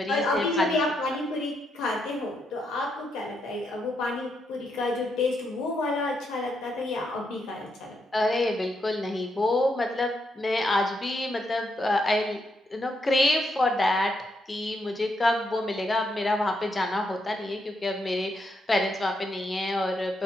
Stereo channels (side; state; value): both; normal; correlation 0.79